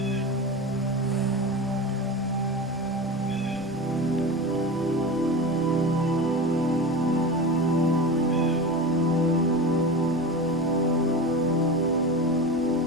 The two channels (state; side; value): normal; both; correlation 0.26